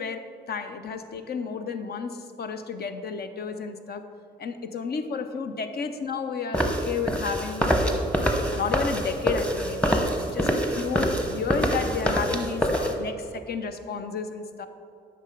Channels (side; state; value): both; normal; correlation 0.53